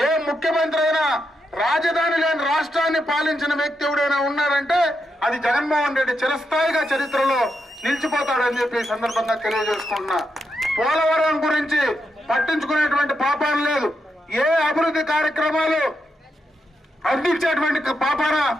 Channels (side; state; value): both; normal; correlation 0.84